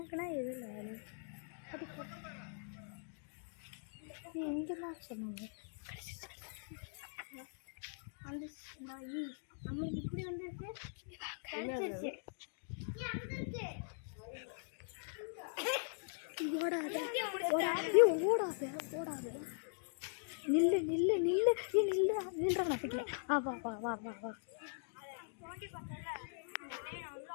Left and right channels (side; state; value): right; silent; digital silence